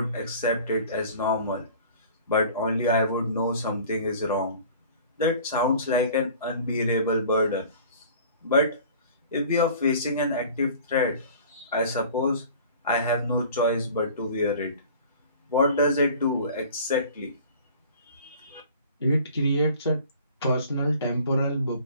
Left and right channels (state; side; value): inverted; both; correlation -0.46